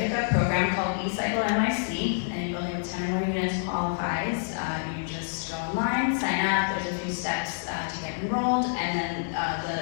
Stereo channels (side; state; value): right; silent; digital silence